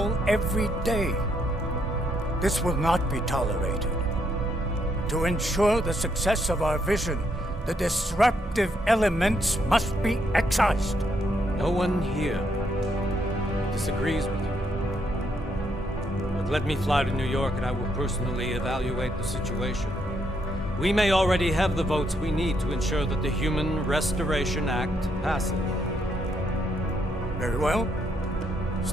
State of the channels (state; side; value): normal; both; correlation 0.75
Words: every day. This will not be tolerated. To ensure the success of our vision, the disruptive elements must be excised. No one here disagrees with you. But let me fly to New York and I will personally evaluate the situation. We may already have the votes we need to ensure that the Human Restoration Act passes. Very well.